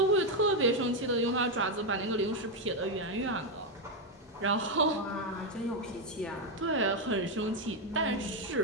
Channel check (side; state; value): both; normal; correlation 0.04